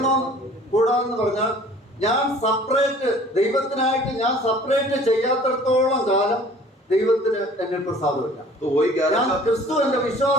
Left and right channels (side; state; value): both; normal; correlation 0.51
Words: കൂടാതെന്ന് പറഞ്ഞാൽ ഞാൻ സെപ്പറേറ്റ് ദൈവത്തിനായിട്ട് ഞാൻ സെപ്പറേറ്റ് ചെയ്യാത്തിടത്തോളം കാലം ദൈവത്തിന് എന്നിൽ പ്രസാദമില്ല. ഞാൻ ക്രിസ്തു എന്റെ